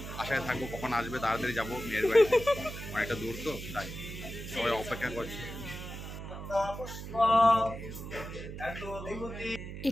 আশায় থাকবো কখন আসবে, তাড়াতাড়ি যাবো। মেয়ের বাড়িতে অনেকটা দূর তো, তাই সবাই অপেক্ষা করছে।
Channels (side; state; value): right; noise; hum, 9 dB below the sound